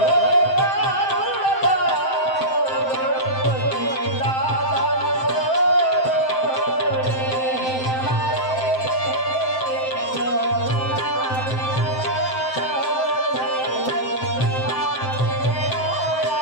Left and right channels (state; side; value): late; right; 7.7 ms